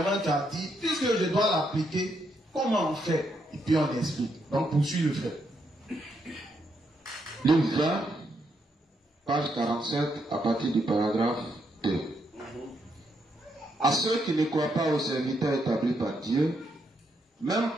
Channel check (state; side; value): normal; both; correlation 0.78